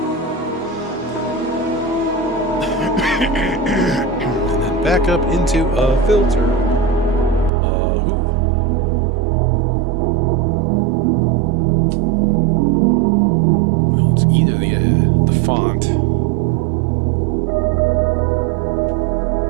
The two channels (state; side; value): drops out; left; at 7.5 s